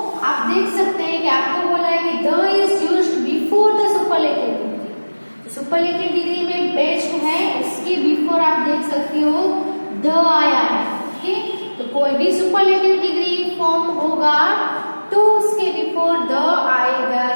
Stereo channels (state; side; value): inverted; both; correlation -1.00